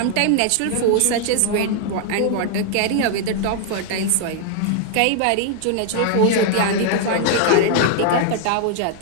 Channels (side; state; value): both; different; correlation 0.00